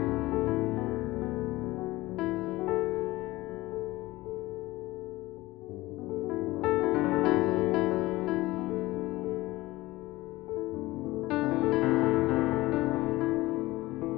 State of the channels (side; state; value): right; quieter; 19.2 dB